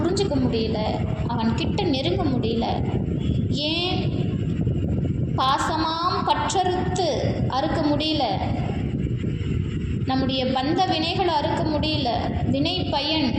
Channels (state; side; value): identical; both; correlation 1.00